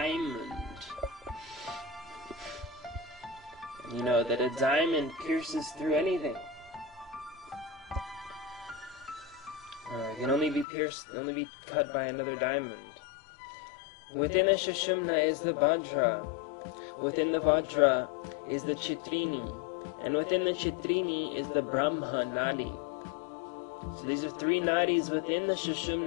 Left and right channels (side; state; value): right; drops out; at 10.7 s